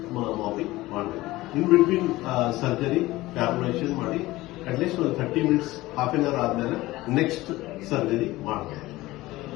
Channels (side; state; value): right; quieter; 18.4 dB